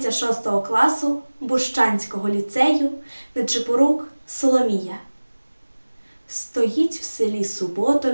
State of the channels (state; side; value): inverted; both; correlation -1.00